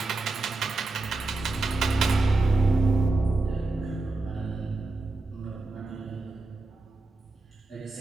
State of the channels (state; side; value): quieter; left; 3.2 dB